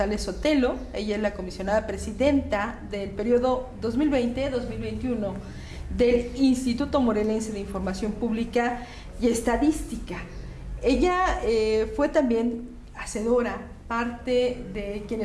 Sotelo. Ella es la comisionada presidenta del periodo 2020-2021 del Instituto Morelense de Información Pública y Estadística. Ella fue también hacedora, parte de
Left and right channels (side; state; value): both; identical; correlation 1.00